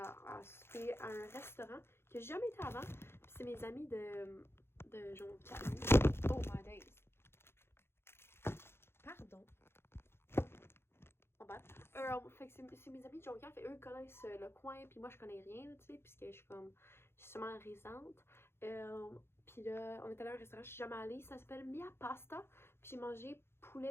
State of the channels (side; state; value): right; late; 0.12 ms